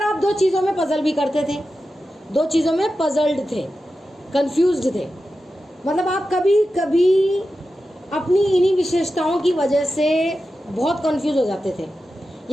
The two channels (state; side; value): normal; both; correlation 0.92